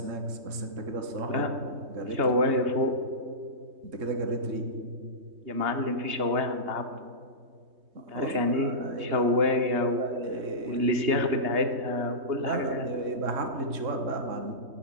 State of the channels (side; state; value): left; late; 3.2 ms